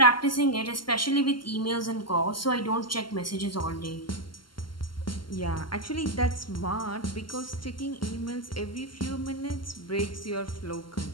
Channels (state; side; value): late; right; 0.72 ms